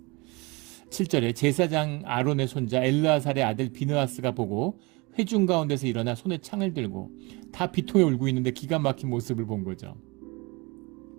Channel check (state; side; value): quieter; left; 26.3 dB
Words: 7절에 제사장 아론의 손자 엘르아살의 아들 비느하스가 보고 회중 가운데서 일어나 손에 창을 들고, 다 비통에 울고 있는데 기가 막힌 모습을 본 거죠.